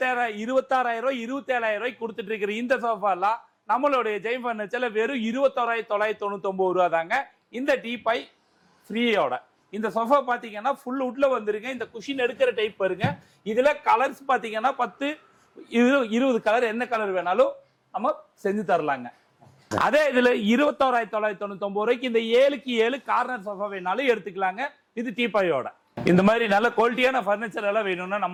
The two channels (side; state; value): both; identical; correlation 1.00